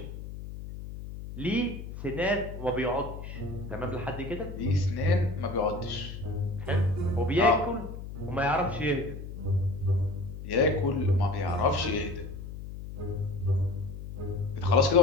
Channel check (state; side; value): noise; left; hum, 10 dB below the sound